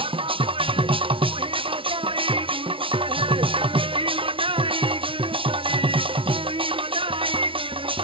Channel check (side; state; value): left; late; 0.25 ms